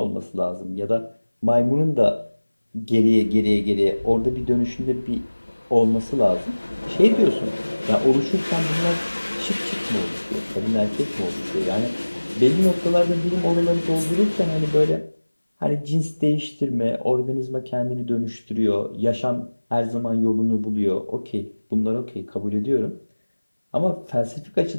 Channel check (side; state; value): both; inverted; correlation -1.00